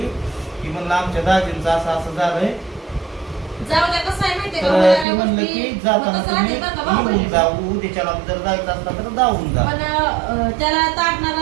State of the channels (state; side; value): drops out; left; at 5.1 s